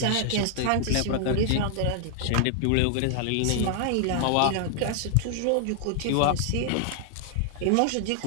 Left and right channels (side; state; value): both; different; correlation 0.00